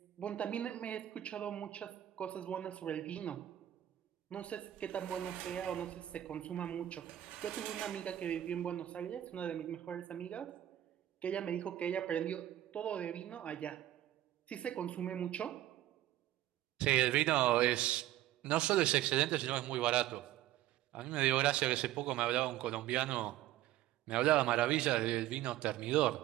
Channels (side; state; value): left; quieter; 13.5 dB